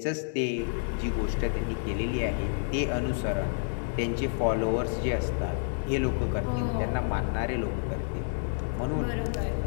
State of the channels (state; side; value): silent; right; 58 dB below the other